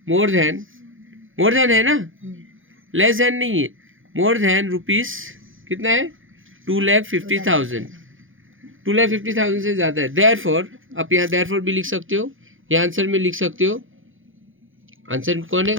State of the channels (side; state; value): left; late; 0.58 ms